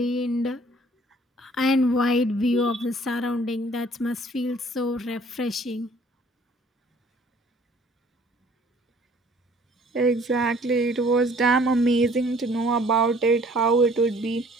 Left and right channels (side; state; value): both; normal; correlation 0.56